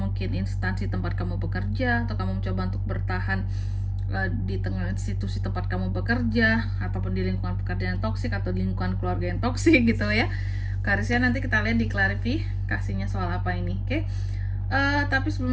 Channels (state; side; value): identical; both; correlation 1.00